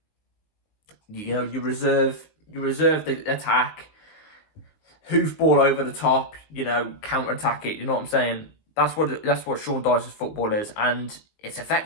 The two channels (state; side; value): late; right; 19 ms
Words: You know, you reserve the attack, hoof ball over the top. You know, counter attack it. You know what I'm saying? That's what Sean Dyche's football is, and it's